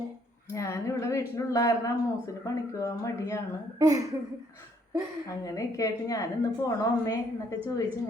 ഞാനിവിടെ വീട്ടിലുള്ള കാരണം മൂസിന് പണിക്ക് പോകാൻ മടിയാണ്. അങ്ങനെയൊക്കെ ആയിട്ട് ഞാനിന്ന് പോണോ അമ്മേ എന്നൊക്കെ ചോദിച്ച്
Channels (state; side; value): normal; both; correlation 0.67